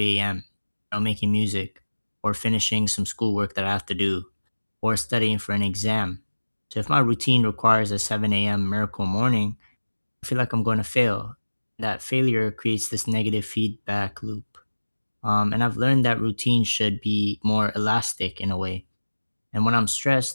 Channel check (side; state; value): both; inverted; correlation -1.00